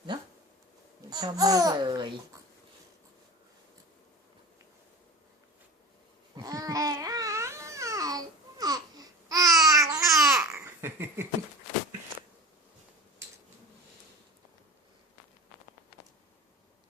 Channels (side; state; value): both; normal; correlation 0.31